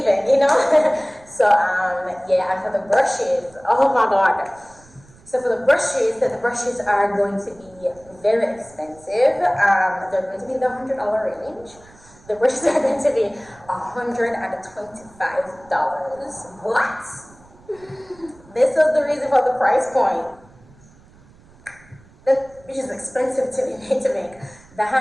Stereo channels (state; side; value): noise; right; rumble, 26 dB below the sound